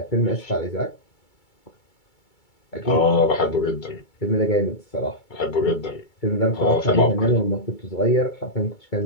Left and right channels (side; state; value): right; late; 2.3 ms